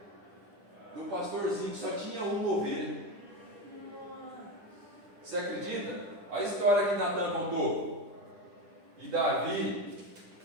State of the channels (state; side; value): late; left; 10 ms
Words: do pastorzinho, que só tinha uma ovelha. Você acredita? A história que Natã contou. E Davi